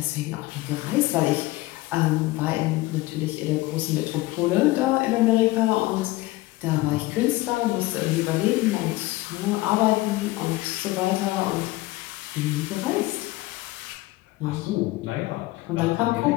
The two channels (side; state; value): right; quieter; 19.1 dB